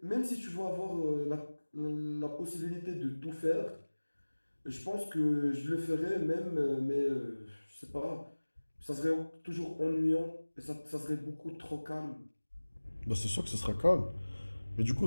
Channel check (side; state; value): both; inverted; correlation -1.00